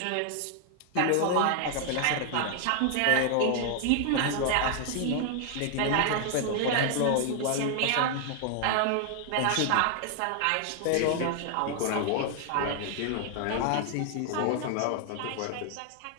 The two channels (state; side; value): different; both; correlation 0.00